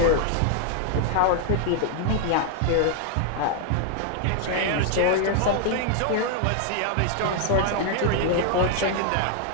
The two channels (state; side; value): different; both; correlation 0.00